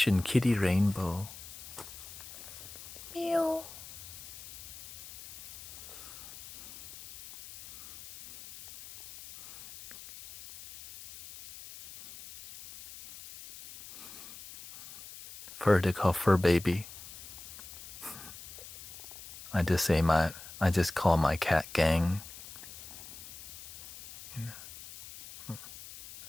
Kitty Rainbow. Meow. They call fur baby. I just call my cat gang. I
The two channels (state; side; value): noise; left; hiss, 14 dB below the sound